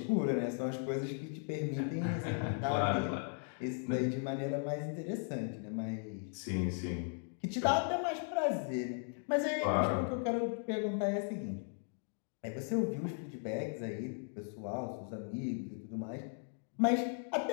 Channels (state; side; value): silent; right; 53 dB below the other